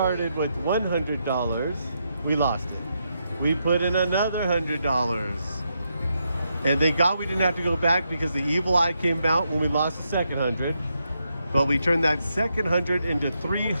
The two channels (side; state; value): both; inverted; correlation -0.81